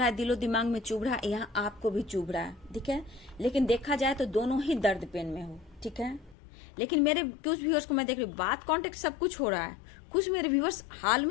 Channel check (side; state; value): right; drops out; at 6.4 s